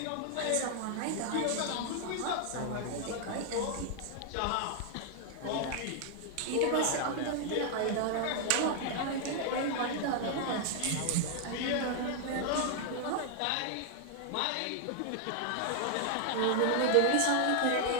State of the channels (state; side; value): different; both; correlation 0.00